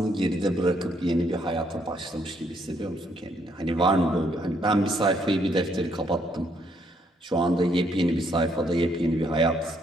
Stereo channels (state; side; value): normal; both; correlation 0.71